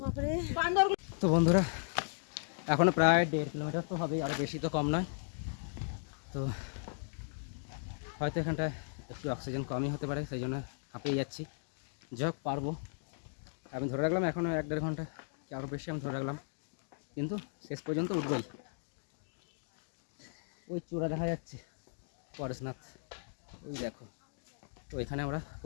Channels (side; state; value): right; silent; digital silence